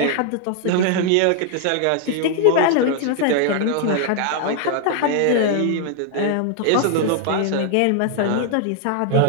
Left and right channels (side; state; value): both; different; correlation 0.00